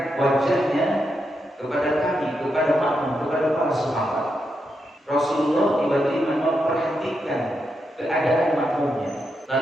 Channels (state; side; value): normal; both; correlation 0.84